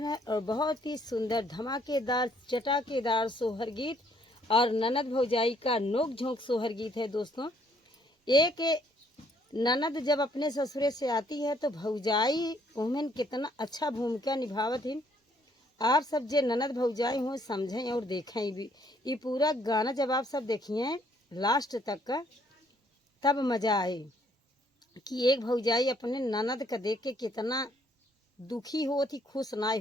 है। और बहुत ही सुंदर धमाकेदार चटाकेदार सोहर गीत और ननद भौजाई का नोक झोंक सोहर गीत है। दोस्तों एक ननद जब अपने ससुरे से आती है तो भौजाई उमें कितना अच्छा भूमिका निभावत है। आप सब जे ननद भौजाई हो समझें और देखें भी। ये पूरा गाना जब आप सब देखिए लास्ट तक का तब मजा आए कि एक भौजाई अपने ननद का देख के कितना दुखी होती, खुश ना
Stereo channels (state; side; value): normal; both; correlation 0.66